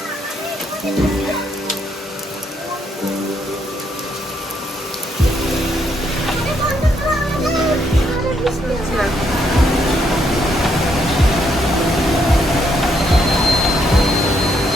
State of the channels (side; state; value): both; normal; correlation 0.74